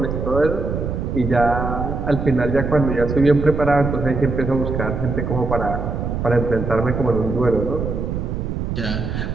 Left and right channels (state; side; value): noise; right; rumble, 3 dB below the sound